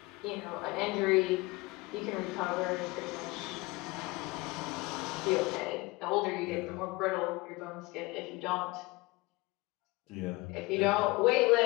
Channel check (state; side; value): quieter; right; 23.2 dB